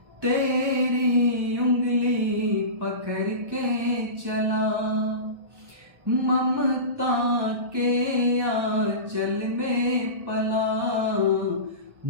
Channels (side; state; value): left; late; 1.1 ms